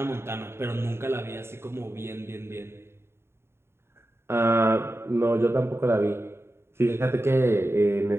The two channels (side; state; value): left; late; 0.12 ms